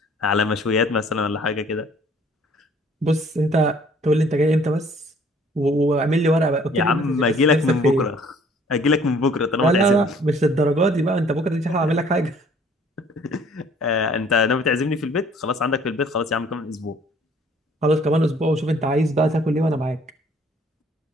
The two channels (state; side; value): normal; both; correlation 0.57